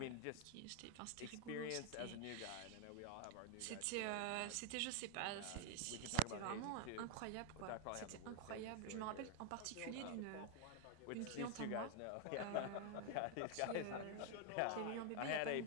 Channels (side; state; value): both; different; correlation 0.00